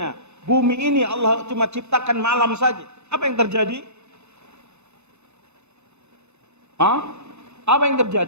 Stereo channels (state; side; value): late; left; 0.81 ms